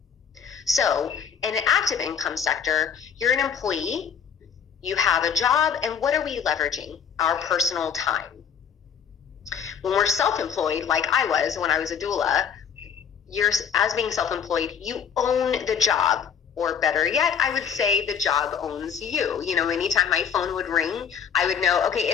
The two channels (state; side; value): quieter; right; 7.5 dB